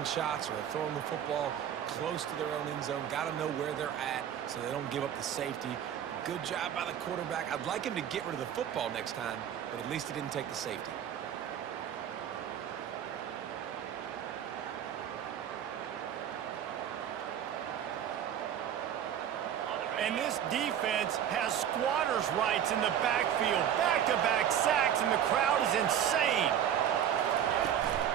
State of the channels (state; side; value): quieter; left; 9.7 dB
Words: shots or they're throwing the football close to their own end zone, got to know where they're at so they don't give up the safety. Good job by the quarterback. I'd like him to get rid of the football next time, but at least he didn't take the safety. And this defense has squatters' rights in the backfield. Back-to-back sacks, and the crowd is insane.